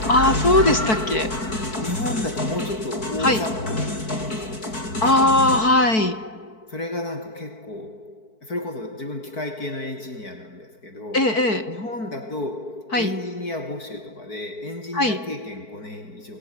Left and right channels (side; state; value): right; late; 4.6 ms